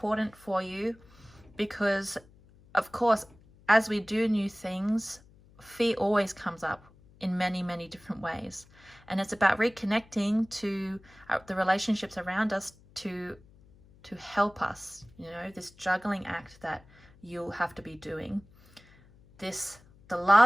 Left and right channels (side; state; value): left; noise; hum, 26 dB below the sound